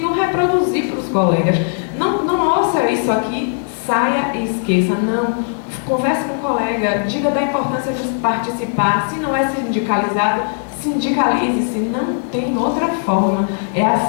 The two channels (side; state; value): right; silent; digital silence